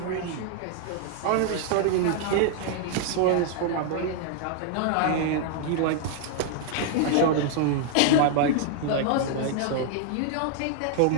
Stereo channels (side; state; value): both; different; correlation 0.00